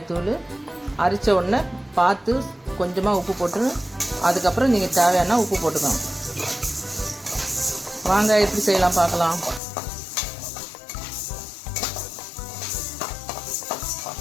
அரைச்ச உடனே பார்த்து கொஞ்சமாக உப்பு போட்டு அதுக்கப்புறம் நீங்கள் தேவையான உப்பு போட்டுக்கணும். வாங்க எப்படி செய்யலாம் பார்க்கலாம்.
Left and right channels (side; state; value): right; drops out; at 9.6 s